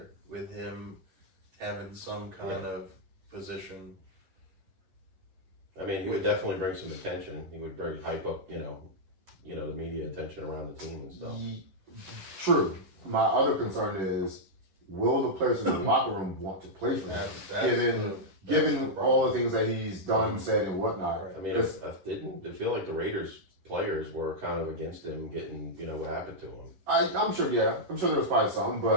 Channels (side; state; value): left; late; 10 ms